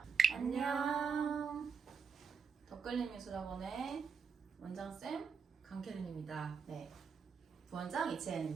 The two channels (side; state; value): left; quieter; 5.9 dB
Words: 안녕. 덧글림미술학원의 원장쌤, 강캐린입니다. 네, 부원장